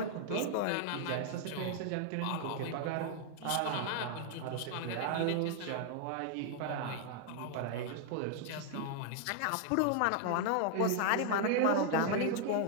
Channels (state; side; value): different; both; correlation 0.00